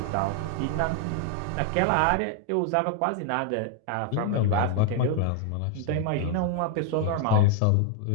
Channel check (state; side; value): different; both; correlation 0.00